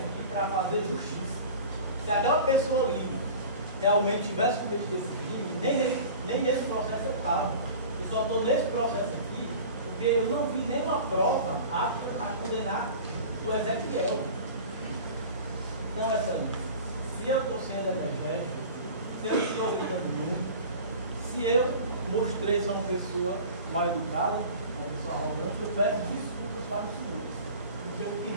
para fazer justiça. Se aquela pessoa ali realmente tivesse cometido esse crime, nem nesse processo eu estava. Eu só estou nesse processo aqui porque eu não vi nenhuma prova apta a condenar o Ezequiel. Então, se eu estou sendo energético, se eu estou gritando muito, se eu mostrei ser uma pessoa mal educada, uma pessoa arrogante, eu peço desculpas para os senhores. Porque o que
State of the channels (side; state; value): both; inverted; correlation -0.39